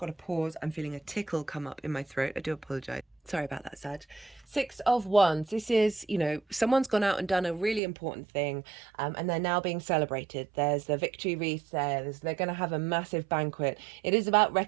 to pause. I'm feeling a tickle come up in my throat. I do apologize. Sorry about that, Sag. Six of Wands. This is, someone's gone out and done a really important thing, and they're now being celebrated. There's the victory wreath there. They're going to have a massive banquet. It is about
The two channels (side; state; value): left; drops out; at 7.8 s